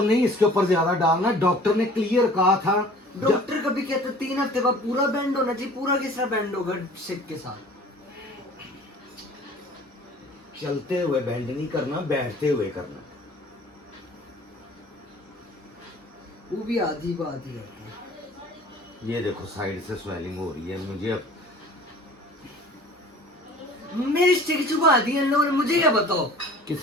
नहीं इसके ऊपर ज्यादा डालना, डॉक्टर ने क्लियर कहा था। डॉक्टर कभी कहते 3 हफ्ते बाद पूरा बैंड होना चाहिए, पूरा किस तरह बैंड होगा स्टिक के साथ? चलते हुए बैंड नहीं करना, बैठते हुए करना। वो भी आधी बात ही है। ये देखो साइड से स्वेलिंग हो रही है मुझे अब। मेरी स्टिक छुपा दी इन लोगों ने, मुझे क्या बताओ।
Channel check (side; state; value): both; normal; correlation 0.47